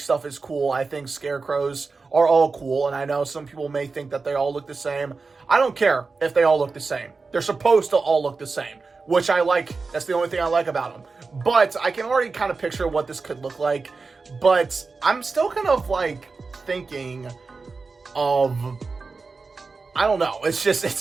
is cool. I think Scarecrows are all cool, and I know some people may think that they all look the same. I don't care if they all look the same. They're supposed to all look the same, which I like. That's the only thing I like about them. But I can already kind of picture what this could look like. But I'm still kind of like thinking of, I don't know.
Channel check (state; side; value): quieter; left; 4.2 dB